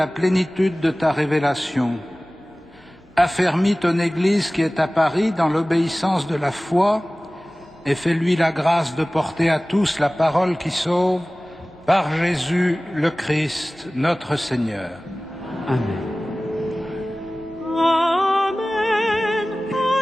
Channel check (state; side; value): normal; both; correlation 0.98